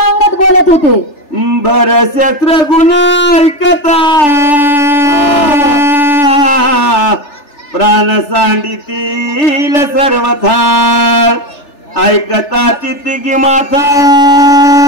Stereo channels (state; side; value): late; right; 3.4 ms